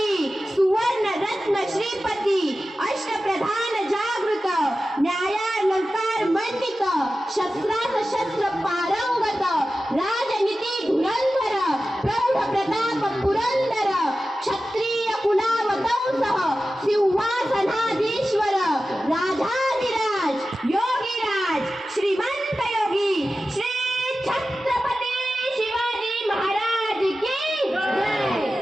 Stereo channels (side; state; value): both; normal; correlation 0.94